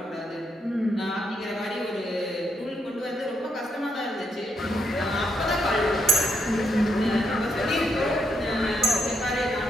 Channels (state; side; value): normal; both; correlation 0.78